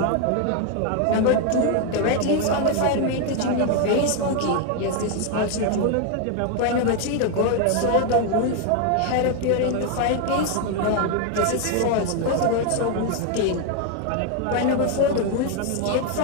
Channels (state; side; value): different; both; correlation 0.00